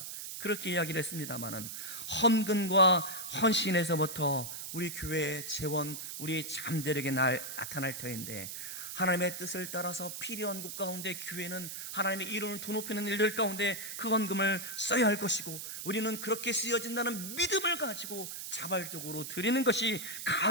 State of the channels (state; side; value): noise; right; hiss, 7 dB below the sound